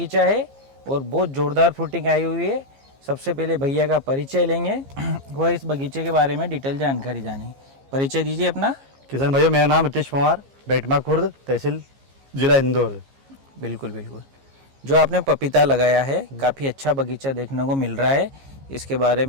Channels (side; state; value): left; late; 15 ms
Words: है और बहुत ज़ोरदार फ्रूटिंग आई हुई है। सबसे पहले भैया का परिचय लेंगे, वह इस बगीचे के बारे में डिटेल जानकारी जानेंगे। परिचय दीजिए अपना। किसान भाइयों, मेरा नाम रितेश कुमार, बेटमा खुर्द, तहसील जिला इंदौर। बिल्कुल बिल्कुल। जो आपने पपीता लगाया है, काफ़ी अच्छा बगीचा देखने को मिल रहा है। इसके बारे